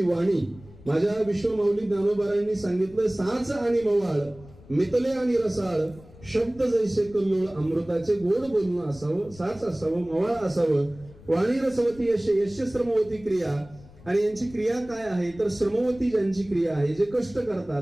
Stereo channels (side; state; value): left; noise; rumble, 22 dB below the sound